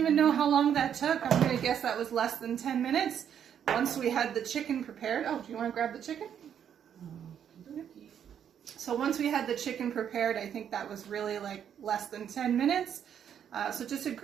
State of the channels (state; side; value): quieter; left; 8.8 dB